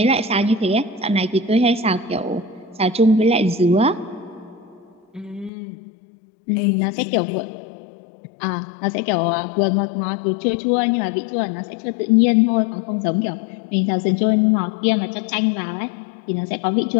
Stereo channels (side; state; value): right; drops out; at 5.5 s